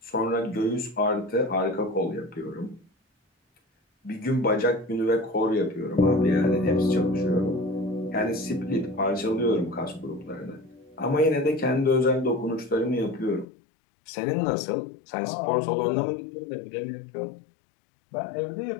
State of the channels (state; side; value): drops out; right; at 13.5 s